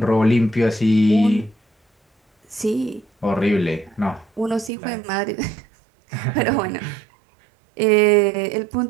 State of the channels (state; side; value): drops out; left; at 4.7 s